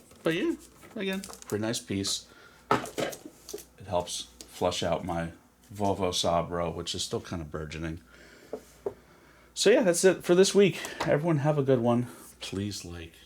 But yeah, again, pretty nice piece. It helps flush out my Volvo Sabro, which is still kind of burgeoning. So yeah, that's it for this week. Everyone have a good one. Please like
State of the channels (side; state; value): both; identical; correlation 1.00